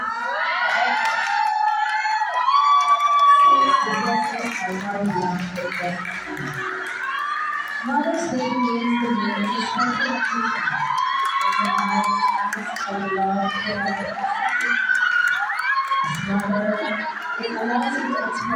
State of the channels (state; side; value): identical; both; correlation 1.00